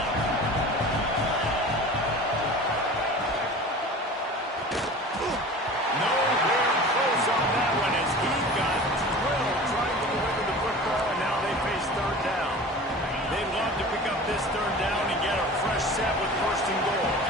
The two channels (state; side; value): normal; both; correlation 0.38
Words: Nowhere close on that one as he got drilled trying to deliver the football, and now they face 3rd down. They'd love to pick up this 3rd down and get a fresh set with 1st and goal.